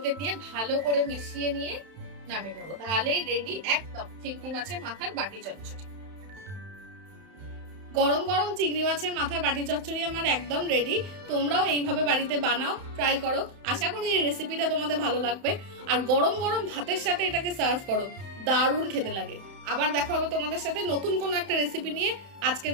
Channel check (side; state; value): left; late; 31 ms